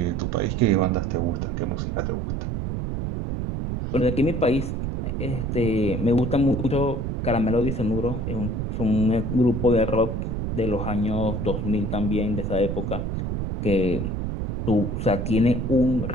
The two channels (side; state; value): right; noise; rumble, 2 dB below the sound